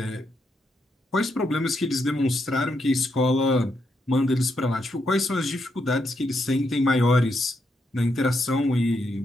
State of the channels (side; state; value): both; normal; correlation 0.80